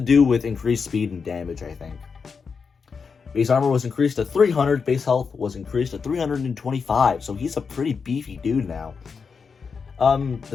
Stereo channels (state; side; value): quieter; right; 5.5 dB